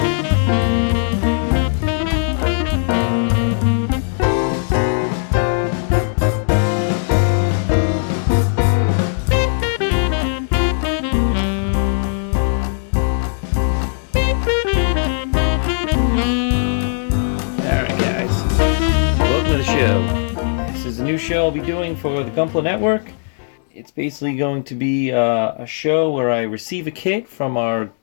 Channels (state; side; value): silent; right; digital silence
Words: This is a new show I'll be doing for the Gunpla Network. It's basically going to be a show where I receive a kit from our